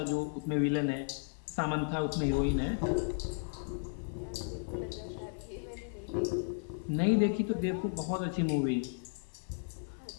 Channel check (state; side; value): silent; right; digital silence